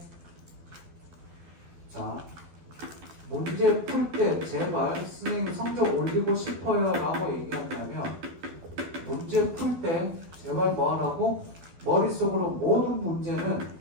자, 문제 풀 때 제발 선생님 성적 올리고 싶어요 라고 얘기한다면 문제 풀 때 제발 뭐 하라고? 머릿속으로 모든 문제는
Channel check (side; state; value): left; late; 12 ms